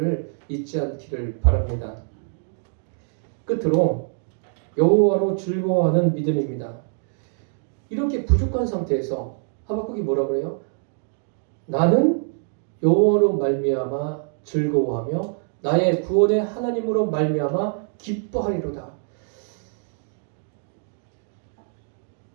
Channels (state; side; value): silent; left; 62 dB below the other